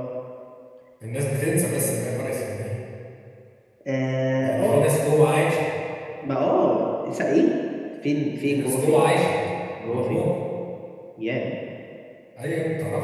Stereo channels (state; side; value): identical; both; correlation 1.00